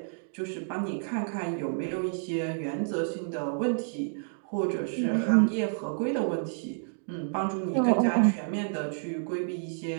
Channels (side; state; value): left; silent; digital silence